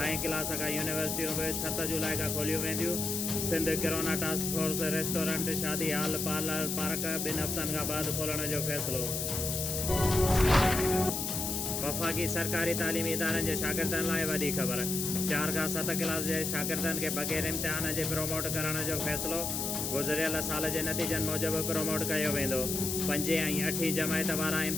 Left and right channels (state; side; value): noise; left; hiss, 2 dB below the sound